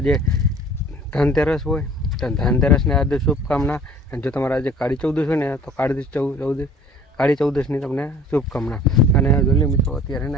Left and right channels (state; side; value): normal; both; correlation 0.49